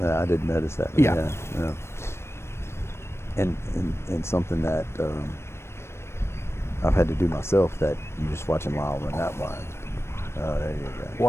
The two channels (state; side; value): late; right; 0.12 ms